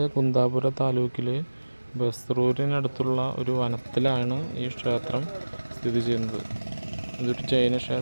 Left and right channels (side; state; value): both; inverted; correlation -1.00